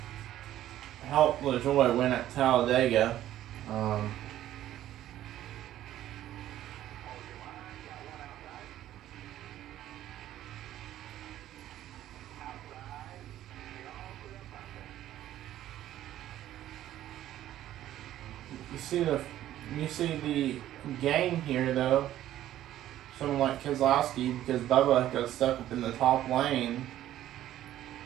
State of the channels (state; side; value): quieter; left; 12.9 dB